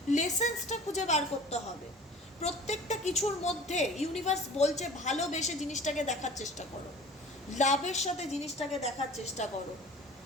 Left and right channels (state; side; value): normal; both; correlation 0.43